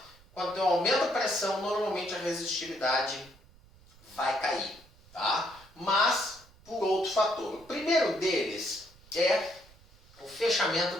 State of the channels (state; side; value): noise; right; rumble, 26 dB below the sound